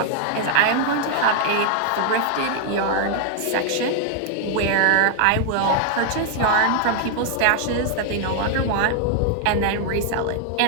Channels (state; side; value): different; both; correlation 0.00